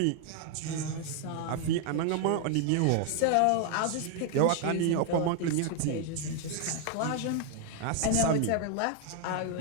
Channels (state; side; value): different; both; correlation 0.00